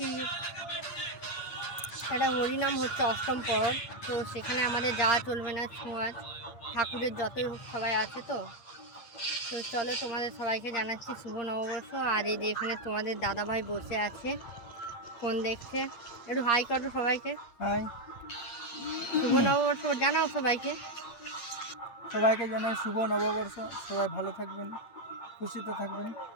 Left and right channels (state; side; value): late; right; 8.6 ms